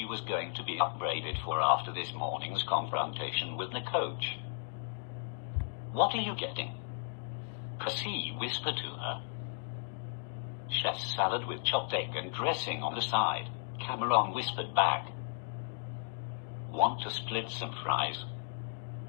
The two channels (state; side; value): silent; right; digital silence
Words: was going to be upbraided for after this morning's confrontation with the coach. What are you getting? Cassie whispered to her. Chef's salad with chopped egg and dressing on the side, Cameron whispered back. Want to split some fries?